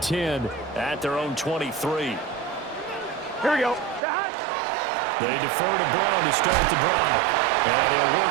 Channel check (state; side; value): drops out; left; at 4.0 s